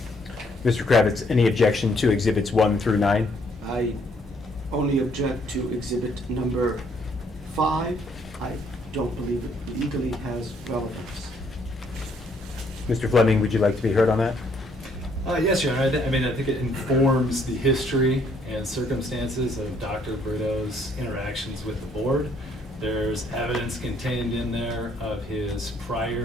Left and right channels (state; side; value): normal; both; correlation 0.67